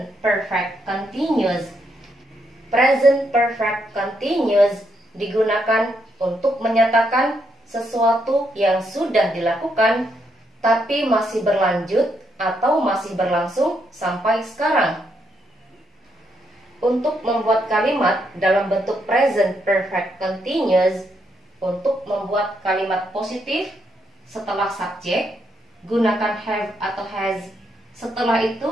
perfect continuous. Present perfect continuous digunakan untuk menyatakan sesuatu yang sudah dilakukan tapi masih berlanjut atau masih berlangsung sampai sekarang. Untuk membuat kalimat dalam bentuk present perfect continuous, untuk membuat kalimat positif setelah subjek, gunakan have atau has. Setelah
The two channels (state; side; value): normal; both; correlation 0.78